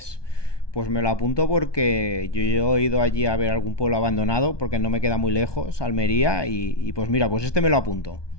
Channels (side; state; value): right; late; 1.2 ms